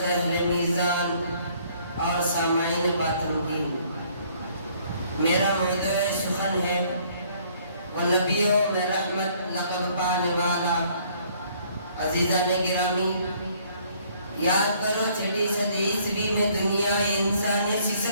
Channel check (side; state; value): both; inverted; correlation -0.62